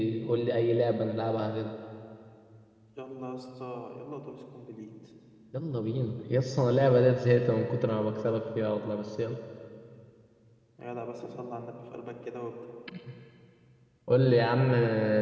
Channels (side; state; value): both; identical; correlation 1.00